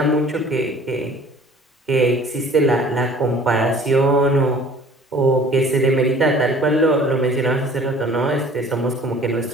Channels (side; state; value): both; normal; correlation 0.50